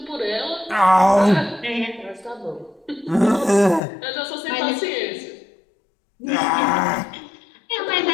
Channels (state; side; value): drops out; right; at 3.8 s